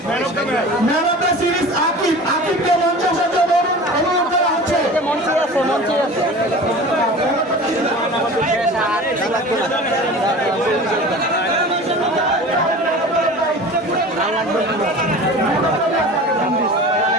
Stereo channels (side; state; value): both; normal; correlation 0.37